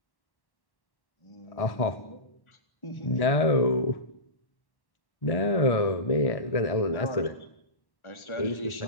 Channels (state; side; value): late; right; 1.1 ms